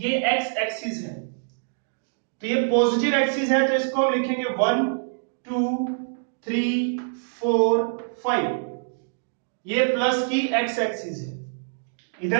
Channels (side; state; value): left; silent; digital silence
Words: एक्स एक्सिस है तो ये पॉजिटिव एक्सिस है, तो इसको हम लिखेंगे 1 2 3 4 5। ये प्लस की एक्स एक्सिस है।